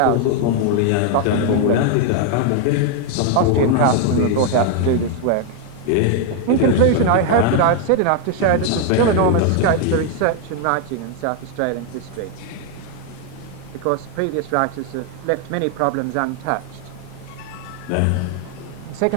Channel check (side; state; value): both; different; correlation 0.00